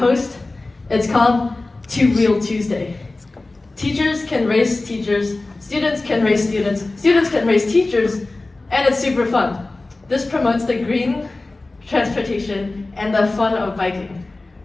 It's called Two-Wheel Tuesday. Teachers can race teachers, students can race students, students can race teachers, and it's super fun. This promotes the green transportation and the fun of biking.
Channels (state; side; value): quieter; right; 3.1 dB